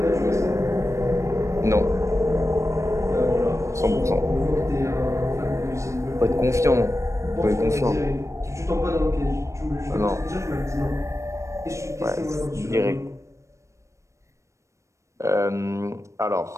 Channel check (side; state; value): left; late; 0.15 ms